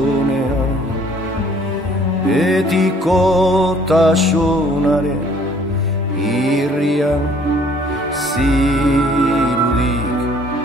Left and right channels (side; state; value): both; normal; correlation 0.58